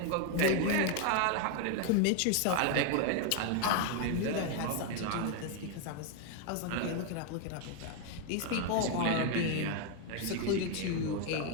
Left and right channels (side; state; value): both; different; correlation 0.01